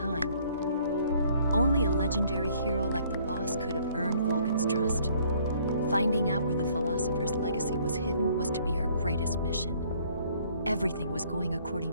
Only a legendary hero like the boss could have earned Volgin's trust. Finding out where the philosopher's legacy was hidden was to be her greatest mission. Everything was going according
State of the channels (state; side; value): inverted; both; correlation -0.61